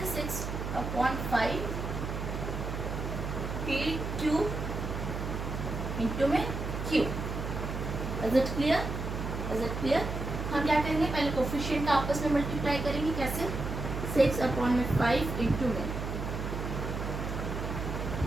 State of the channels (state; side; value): noise; right; hum, 4 dB below the sound